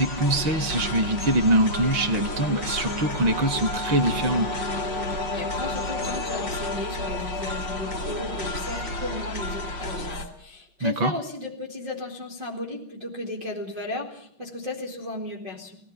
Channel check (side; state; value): left; late; 6.0 ms